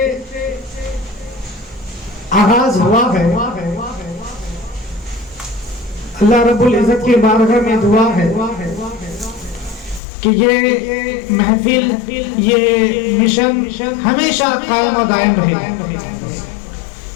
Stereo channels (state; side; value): drops out; right; at 10.0 s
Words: آغاز ہوا ہے۔ اللہ رب العزت کی بارگاہ میں دعا ہے کہ یہ محفل، یہ مشن ہمیشہ قائم و دائم رہے،